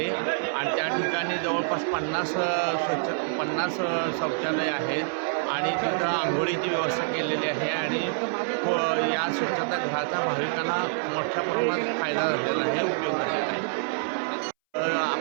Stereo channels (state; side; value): silent; left; 60 dB below the other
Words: आणि त्या ठिकाणी जवळपास 50 शौचालय आहेत आणि तिथं आंघोळीची व्यवस्था केलेली आहे आणि या स्वच्छतागृहाचा भाविकांना मोठ्या प्रमाणात फायदा झालेला आहे, उपयोग झालेला आहे.